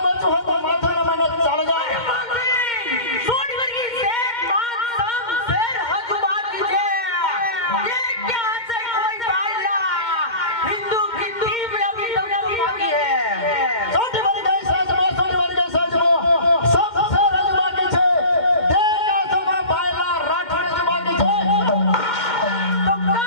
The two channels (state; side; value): late; right; 2.1 ms